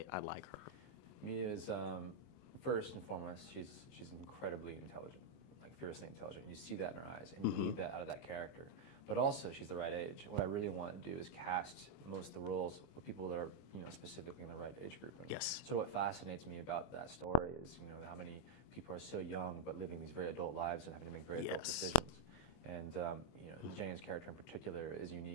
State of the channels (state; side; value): late; right; 24 ms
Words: I like her? Mia is first and foremost, she's incredibly intelligent, like fiercely intelligent, and you see that in her eyes, and you need that out of that character. But also, she's the right age. What I really want to do is cast most of the roles with people that are, you know, specifically in the right age group. And yes. So what fascinates me about that story is, you know, how many people are so young but living these very adult lives and having to make very adult decisions. And you know, Jayne's character in particular is